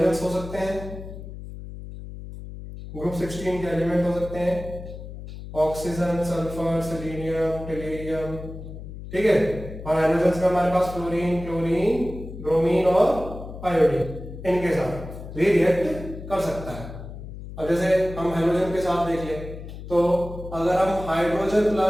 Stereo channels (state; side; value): noise; left; hum, 11 dB below the sound